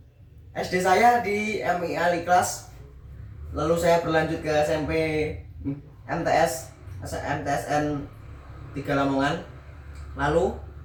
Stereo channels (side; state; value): both; identical; correlation 1.00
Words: SD saya di MI Aliklas. Lalu saya berlanjut ke SMP MTSN 3 Lamongan. Lalu